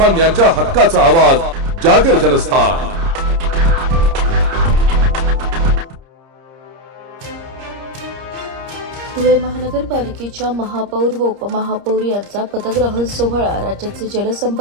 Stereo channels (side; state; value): left; late; 30 ms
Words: हक्काचा आवाज जागर जनस्थान। धुळे महानगरपालिकेच्या महापौर व उपमहापौर यांचा पदग्रहण सोहळा राज्याचे